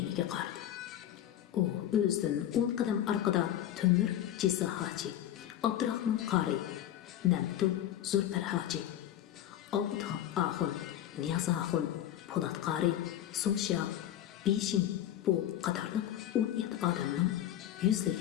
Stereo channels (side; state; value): right; quieter; 11.8 dB